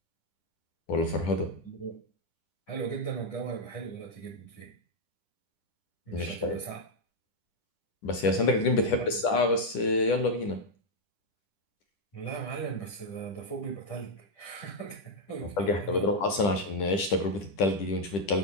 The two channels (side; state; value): right; late; 10 ms